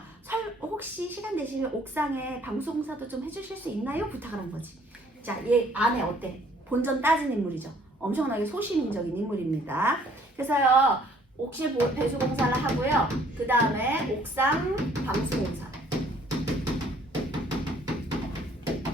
혹시 시간 되시면 옥상에 방송사도 좀 해주실 수 있나요? 부탁을 한 거지. 자, 얘 아내 어때? 본전 따진 인물이죠. 엄청나게 소시민적인 인물입니다. 그래서요. 옥실 배수 공사를 하고요. 그 다음에 옥상 방수 공사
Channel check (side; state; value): both; normal; correlation 0.60